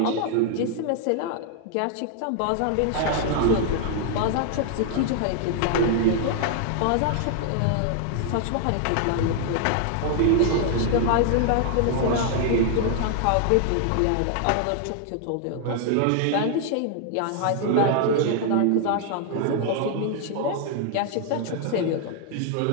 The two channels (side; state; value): both; different; correlation 0.00